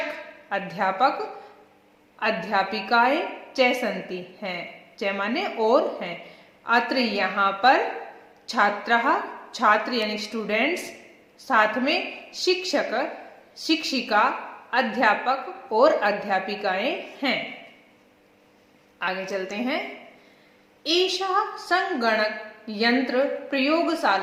अध्यापक अध्यापिकाएं, च सन्ति हैं, च माने और हैं। अत्र यहाँ पर छात्राः छात्र यानी स्टूडेंट्स, साथ में शिक्षक शिक्षिका अध्यापक और अध्यापिकाएं हैं। आगे चलते हैं। एषा संगणक यंत्र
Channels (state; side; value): identical; both; correlation 1.00